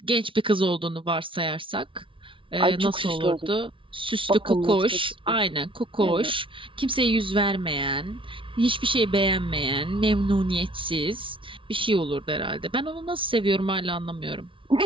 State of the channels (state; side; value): late; left; 0.25 ms